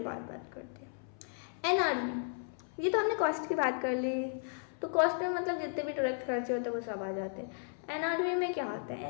बाद बात करते हैं। NRV, ये तो हमने कॉस्ट की बात कर ली, तो कॉस्ट में मतलब जितने भी डायरेक्ट खर्चे होते हैं वो सब आ जाते हैं। NRV में क्या होता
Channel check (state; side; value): silent; right; 55 dB below the other